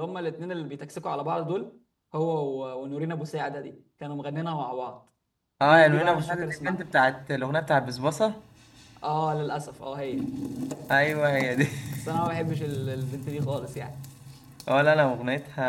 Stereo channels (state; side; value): identical; both; correlation 1.00